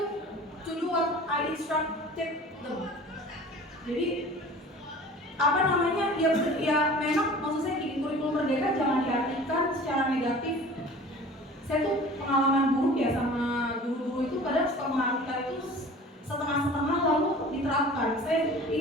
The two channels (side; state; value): both; normal; correlation 0.43